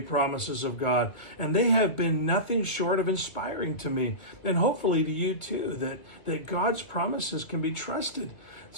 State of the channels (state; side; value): late; right; 2.2 ms